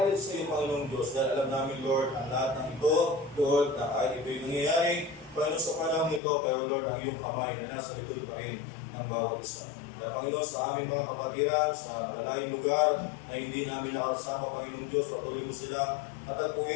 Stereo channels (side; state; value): right; drops out; at 6.2 s